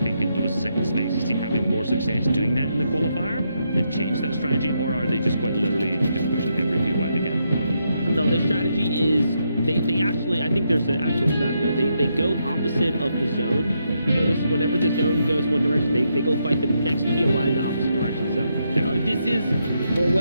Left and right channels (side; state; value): both; inverted; correlation -0.80